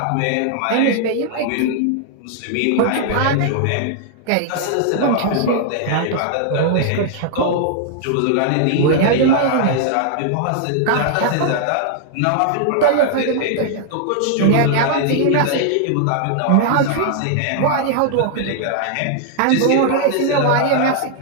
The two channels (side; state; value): both; different; correlation -0.01